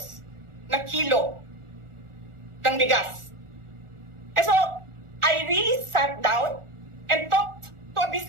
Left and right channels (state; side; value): late; left; 1.4 ms